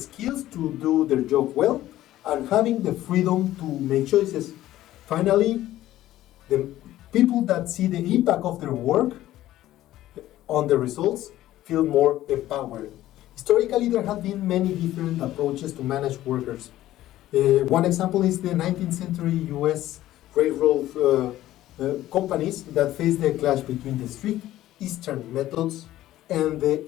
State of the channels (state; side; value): quieter; right; 14.4 dB